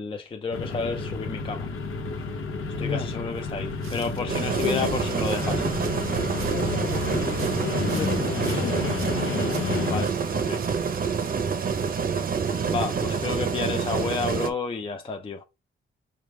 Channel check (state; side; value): normal; both; correlation 0.44